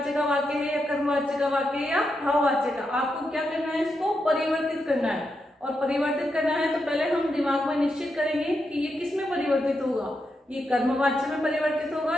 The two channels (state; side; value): normal; both; correlation 0.84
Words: का वाक्य है या कर्मवाच्य का वाक्य है या भाववाच्य का। आपको क्या करना है, इसको परिवर्तित करना है, और परिवर्तित करना है तो पहले हम दिमाग में निश्चित करेंगे कि ये किस में परिवर्तित होगा, ये कर्मवाच्य में परिवर्तित होगा